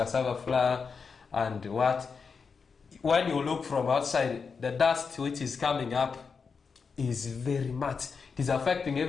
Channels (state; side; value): quieter; right; 5.4 dB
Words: flour and what. When you look from outside, the dust which is coming up is very much. It is affecting